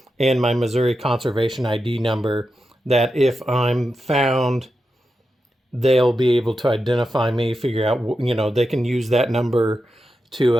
and my Missouri Conservation ID number, that if I'm found, they'll be able to identify me, figure out, they can use that number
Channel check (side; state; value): both; normal; correlation 0.89